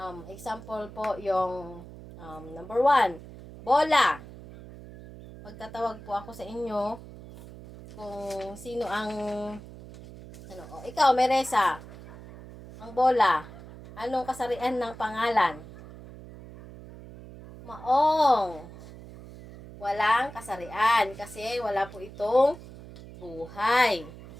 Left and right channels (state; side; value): noise; right; hum, 16 dB below the sound